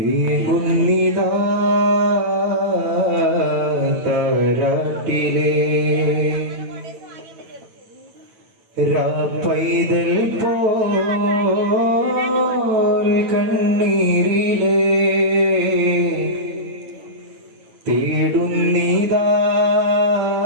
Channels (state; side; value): late; left; 9.1 ms